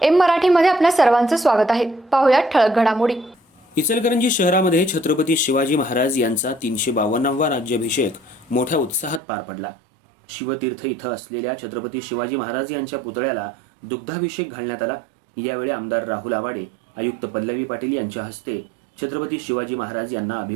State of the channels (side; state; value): left; drops out; at 9.2 s